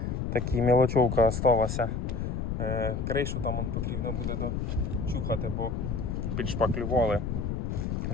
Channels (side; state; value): left; noise; rumble, 2 dB below the sound